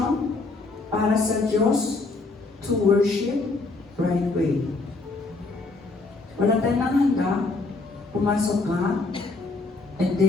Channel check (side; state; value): right; quieter; 3.5 dB